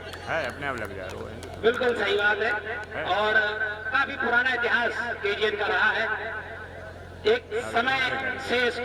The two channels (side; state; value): both; identical; correlation 1.00